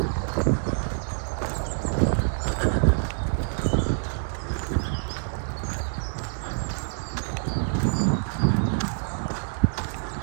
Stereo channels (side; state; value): left; silent; digital silence